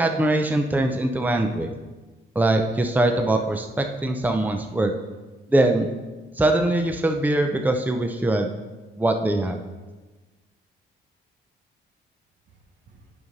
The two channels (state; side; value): normal; both; correlation 0.79